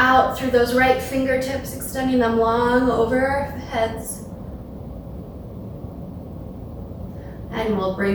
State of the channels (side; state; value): both; identical; correlation 1.00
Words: through those right fingertips, extending them long over our heads. And we'll